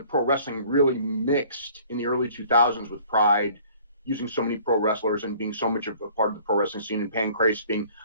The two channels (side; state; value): both; inverted; correlation -0.53